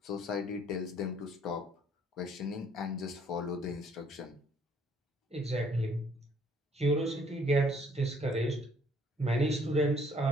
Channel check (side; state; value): both; normal; correlation 0.62